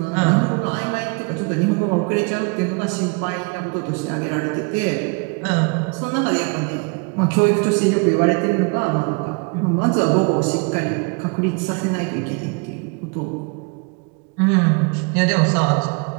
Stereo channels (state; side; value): quieter; left; 32.5 dB